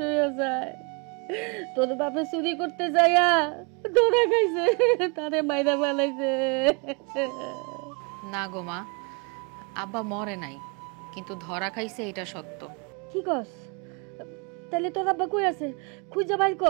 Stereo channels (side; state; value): left; quieter; 32.5 dB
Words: হয়ে যায়। তোর বাপে চুরি করতে যাইয়া ধরা খাইছে, তারে মাইরা ফেলাইছে। না গো মা, আব্বা মরে নাই, কিন্তু ধরা খাইছে এটা সত্য। কি কস? তাহলে তোর আব্বা কই আছে? খুঁজে বাইর